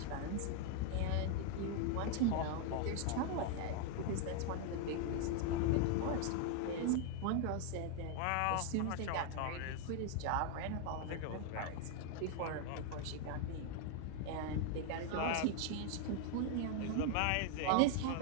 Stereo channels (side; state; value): both; different; correlation 0.00